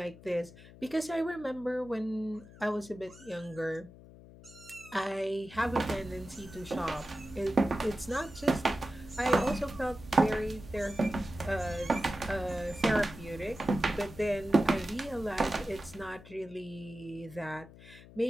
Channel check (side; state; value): left; noise; hum, 19 dB below the sound